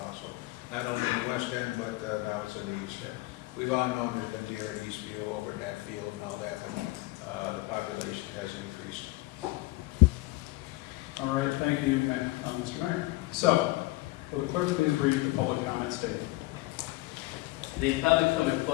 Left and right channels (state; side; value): quieter; right; 20.7 dB